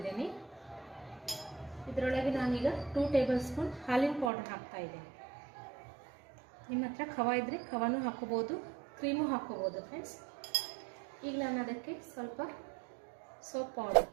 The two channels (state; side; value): drops out; left; at 4.3 s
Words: ಇದರೊಳಗೆ ನಾನೀಗ 2 ಟೇಬಲ್ ಸ್ಪೂನ್ ಹಾಲಿನ ಪೌಡರ್ ಹಾಕ್ತಾ ಇದ್ದೀನಿ. ನಿಮ್ಮ ಹತ್ರ ಖವ ಇದ್ದರೆ ಖವಾನೂ ಹಾಕೋಬೋದು, ಕ್ರೀಮು ಹಾಕೋಬೋದು ಫ್ರೆಂಡ್ಸ್. ಈಗ ನಾನು ಅದಕ್ಕೆ ಸ್ವಲ್ಪ ಸೋಪ್ ಪೌಡರ್,